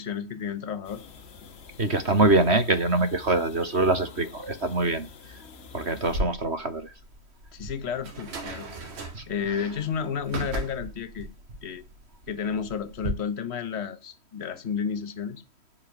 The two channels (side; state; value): left; late; 3.1 ms